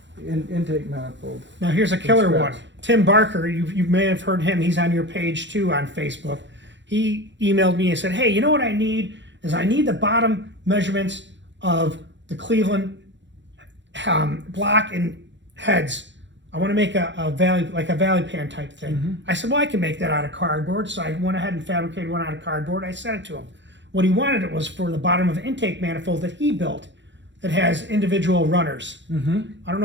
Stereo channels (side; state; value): left; late; 0.53 ms